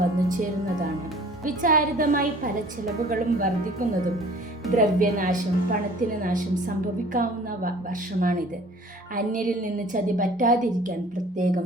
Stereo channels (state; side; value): normal; both; correlation 0.49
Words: വന്നു ചേരുന്നതാണ്. വിചാരിതമായി പല ചെലവുകളും വർദ്ധിക്കുന്നതും ദ്രവ്യനാശം, പണത്തിന് നാശം സംഭവിക്കാവുന്ന വർഷമാണിത്. അന്യരിൽ നിന്ന് ചതി പറ്റാതിരിക്കാൻ